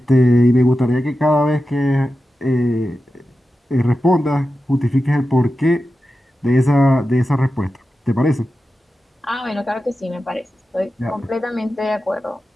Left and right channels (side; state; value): both; normal; correlation 0.92